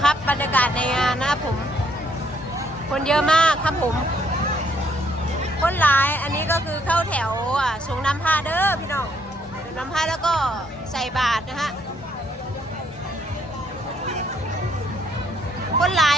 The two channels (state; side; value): normal; both; correlation 0.69